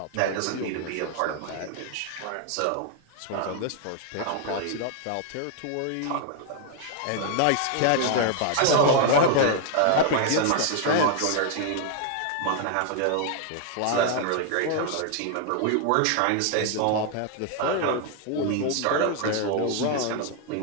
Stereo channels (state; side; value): different; both; correlation 0.00